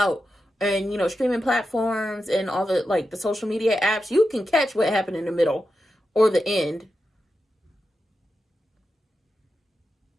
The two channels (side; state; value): both; normal; correlation 0.89